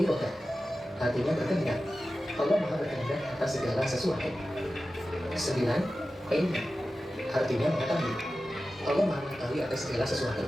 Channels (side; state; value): both; normal; correlation 0.94